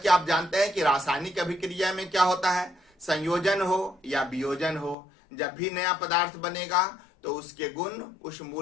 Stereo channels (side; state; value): right; drops out; at 5.0 s